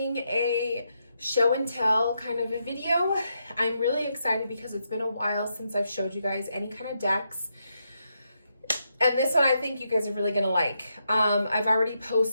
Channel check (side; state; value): both; inverted; correlation -0.81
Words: a show and tell kind of a video. I'm really excited because it's been a while since I've showed you guys any kind of decks. And this one I think you guys are really gonna like. I've already